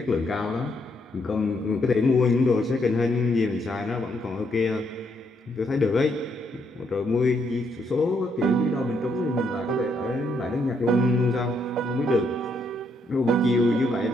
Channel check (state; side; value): normal; both; correlation 0.74